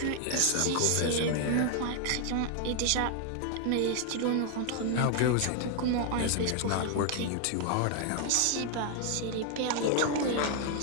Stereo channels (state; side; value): different; both; correlation 0.00